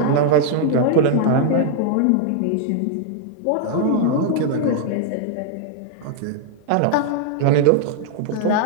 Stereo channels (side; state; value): both; different; correlation 0.00